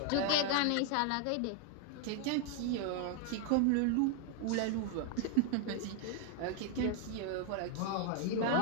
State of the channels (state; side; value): different; both; correlation 0.00